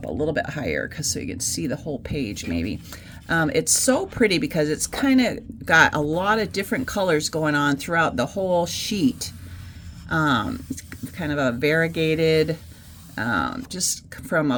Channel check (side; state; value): both; identical; correlation 1.00